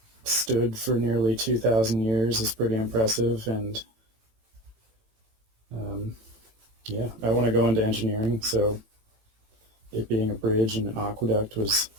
stood for nearly 2,000 years is pretty impressive, and yeah, I want to go into engineering, so it being a bridge and an aqueduct was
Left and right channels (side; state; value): left; late; 18 ms